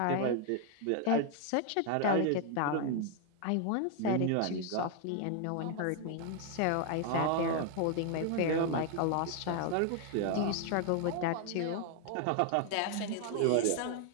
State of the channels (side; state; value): both; different; correlation 0.00